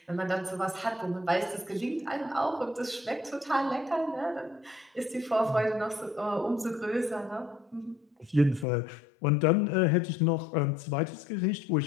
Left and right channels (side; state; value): right; drops out; at 8.7 s